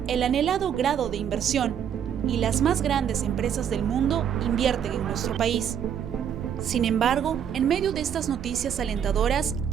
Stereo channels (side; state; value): left; quieter; 8.7 dB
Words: el anhelado grado de inversión y las más grandes empresas del mundo invierten en nuestro país. Sin embargo, en medio de estas noticias alentadoras